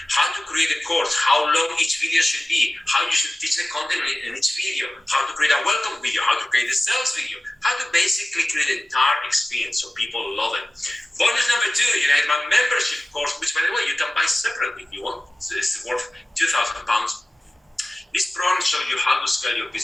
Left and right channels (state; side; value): normal; both; correlation 0.96